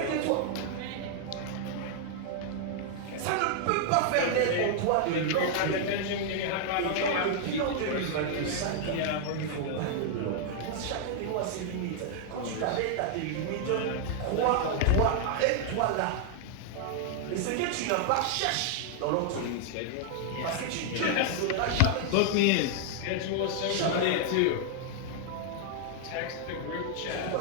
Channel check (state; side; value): different; both; correlation -0.01